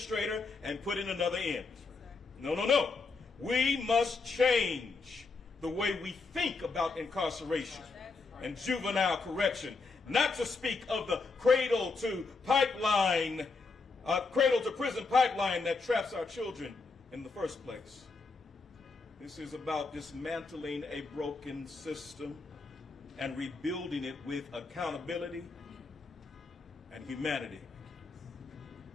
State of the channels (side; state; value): right; quieter; 4.2 dB